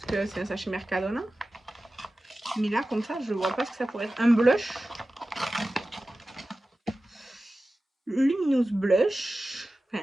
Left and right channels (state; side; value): normal; both; correlation 0.95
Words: que c'est un sachet Mercadona. Mais là, comme ça, je vois pas ce que ça pourrait être. Un blush. Luminous blush. Enfin,